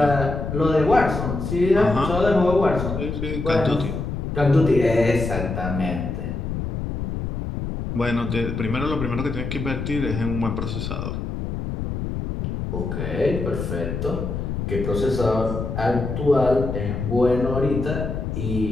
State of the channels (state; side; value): noise; left; rumble, 4 dB below the sound